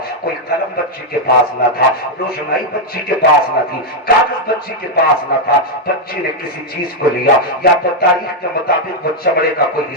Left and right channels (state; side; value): normal; both; correlation 0.00